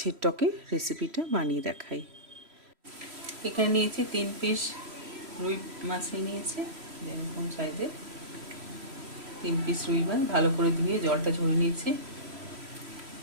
টকের রেসিপিটা বানিয়ে দেখাই। এখানে নিয়েছি 3 পিস রুই মাছ নিয়েছি, এরকম সাইজের 3 পিস রুই মাছ ভালো করে ধুয়ে জলটা ঝরিয়ে নিয়েছি।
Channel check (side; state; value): left; late; 3.1 ms